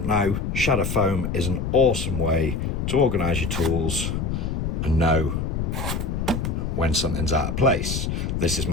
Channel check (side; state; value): left; noise; rumble, 2 dB below the sound